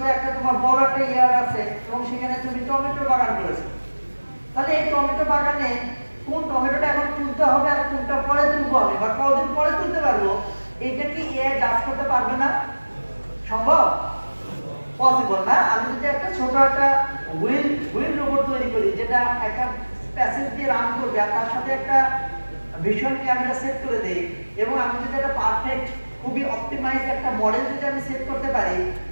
যে একটা তোমার বড় একটা ইয়ার আছে এবং সেখানে তুমি টমেটো বাগান করেছো তাহলে এই টমেটো বাগানে কোন টমেটোটা এখন তুলতে হবে আর কোনটা পরে তুলবো আমি বা কতদিন পরে তুলতে পারবো এটা কি এআই জাজ করতে পারবে না সম্ভব পসিবল না আমি যদি একটা ছোট একটা হুইল রোবট তৈরি করি যেটা একটা প্যাসেজ দিয়ে রান করবে আর তার সাথে একটা ভিশন ক্যামেরা সেট করে দেই এবং আমি যদি একটা পারফেক্ট খুবই অপটিমাইজ একটা মডেল যদি আমি সেট করতে পারি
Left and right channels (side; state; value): both; inverted; correlation -1.00